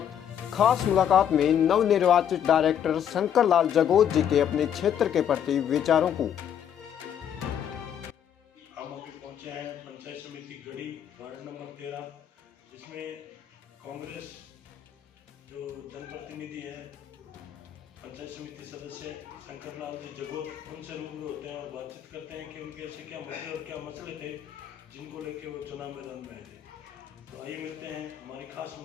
खास मुलाकात में नवनिर्वाचित डायरेक्टर शंकर लाल जगोत जी के अपने क्षेत्र के प्रति विचारों को। हम अभी पहुंचे हैं पंचायत समिति गढ़ी वार्ड नंबर 13, जिसमें कांग्रेस जो जनप्रतिनिधि है पंचायत समिति सदस्य शंकर लाल जी जगोत, उनसे रूबरू होते हैं और बातचीत करते हैं कि उनके ऐसे क्या मुद्दे और क्या मसले थे जिनको लेके वो चुनाव मैदान में आए थे। तो आइए मिलते हैं, हमारी खास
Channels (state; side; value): quieter; right; 9.2 dB